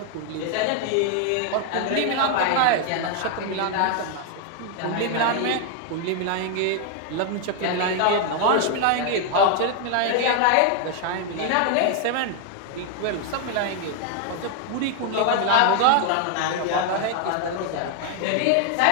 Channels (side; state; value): both; different; correlation 0.00